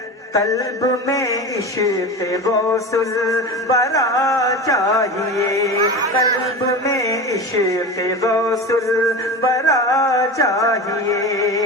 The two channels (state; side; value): normal; both; correlation 0.28